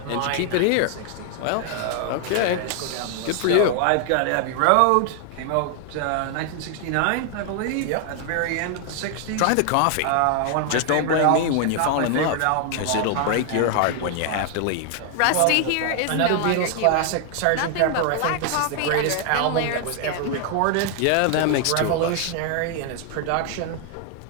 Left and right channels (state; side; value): different; both; correlation 0.00